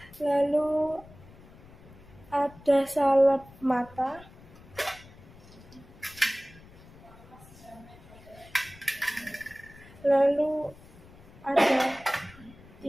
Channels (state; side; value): noise; left; rumble, 21 dB below the sound